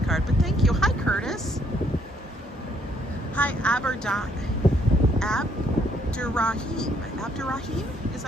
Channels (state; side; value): normal; both; correlation 0.68